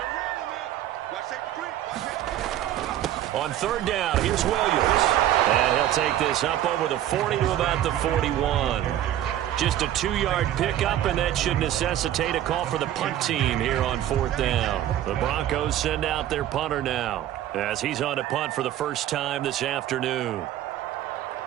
On 3rd down, here's Williams. And he'll take this up over the 40 to about the 41. Just a 2-yard pickup, and that should necessitate a call for the punt team here on 4th down. The Broncos send out their punter now as he's on to punt for the first time this afternoon.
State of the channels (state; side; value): quieter; left; 12.3 dB